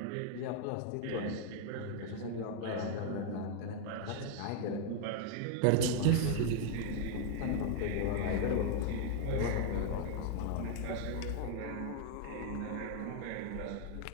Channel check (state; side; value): different; both; correlation 0.00